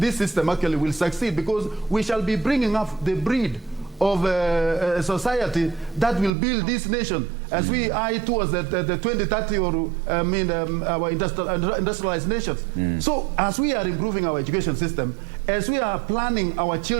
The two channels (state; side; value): drops out; left; at 6.3 s